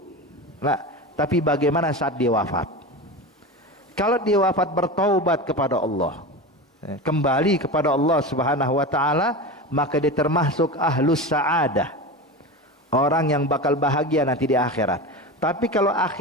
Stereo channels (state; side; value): normal; both; correlation 0.26